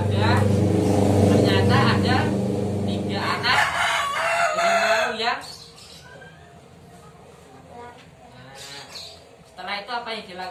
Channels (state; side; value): identical; both; correlation 1.00